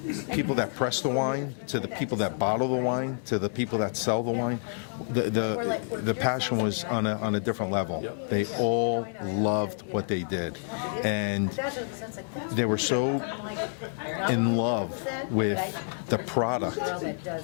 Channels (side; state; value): right; silent; digital silence